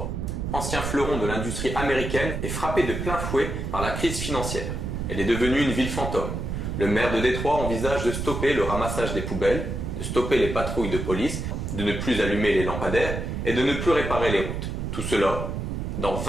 ancien fleuron de l'industrie américaine, est frappée de plein fouet par la crise financière. Elle est devenue une ville fantôme. Le maire de Détroit envisage de stopper le ramassage des poubelles, de stopper les patrouilles de police, de ne plus allumer les lampadaires et de ne plus réparer les routes. Tout cela dans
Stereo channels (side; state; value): right; noise; rumble, 4 dB below the sound